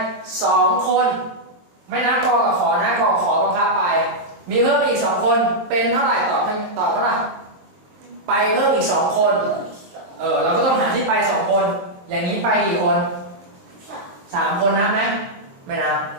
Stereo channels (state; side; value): late; left; 23 ms